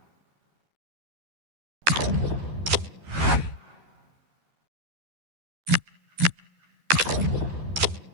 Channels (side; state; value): left; late; 12 ms